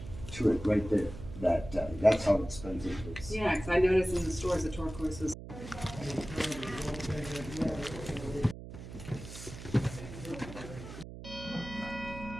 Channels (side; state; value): right; noise; hum, 12 dB below the sound